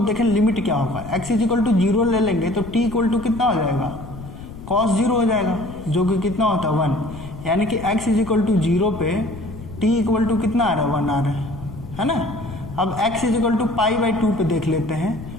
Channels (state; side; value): noise; left; rumble, 13 dB below the sound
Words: देखें लिमिट क्या होगा। x = 0 ले लेंगे तो t = कितना हो जाएगा? cos 0 हो जाएगा, जो कि कितना होता है? 1। यानी कि x = 0 पे t = कितना आ रहा है? 1 आ रहा है ना? अब x = π/2 पे देख लेते हैं,